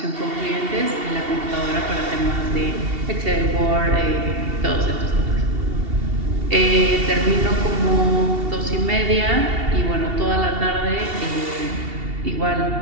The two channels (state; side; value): late; left; 2.7 ms